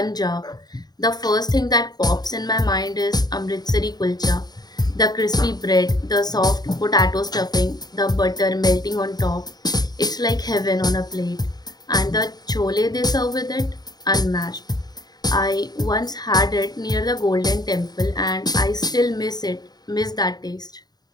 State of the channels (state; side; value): late; right; 0.19 ms